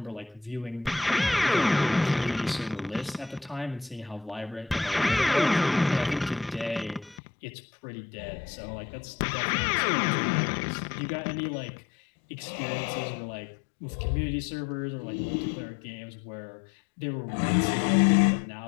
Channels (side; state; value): right; drops out; at 7.2 s